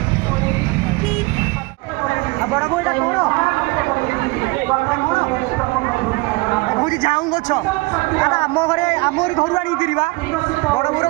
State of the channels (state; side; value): quieter; left; 24.7 dB